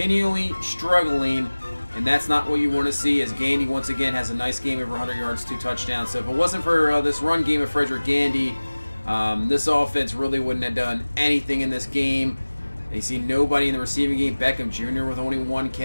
struggling, and that's not what you want to see, as Gandy once again has a nice game, over 100 yards, 2 touchdowns. So if it wasn't for this run game of Frederick Gandy, this offense really wouldn't have done anything in this game. You see nobody in the receiving game. Beckham Jr. with only 1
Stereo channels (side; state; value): both; inverted; correlation -1.00